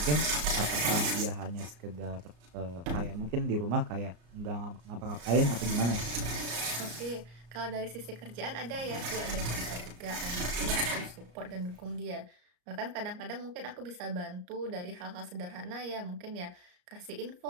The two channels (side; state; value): left; late; 34 ms